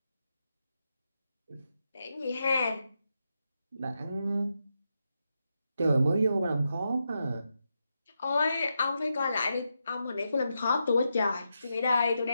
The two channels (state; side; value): inverted; both; correlation -0.86